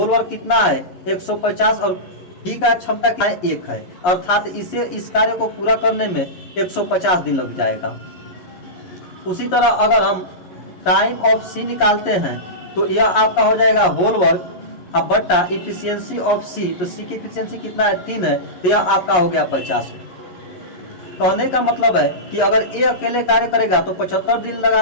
वर्क कितना है 150 और बी का क्षमता क्या है 1 है, अर्थात इस कार्य को पूरा करने में 150 दिन लग जाएगा। उसी तरह अगर हम टाइम ऑफ सी निकालते हैं तो यह आपका हो जाएगा होल वर्क अब बट्टा इफिशियंसी ऑफ सी, तो सी की इफिशियंसी कितना है 3 है, तो यह आपका हो गया 50। कहने का मतलब है कि अगर ए अकेले कार्य करेगा तो 75 दिन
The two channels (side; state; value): right; late; 11 ms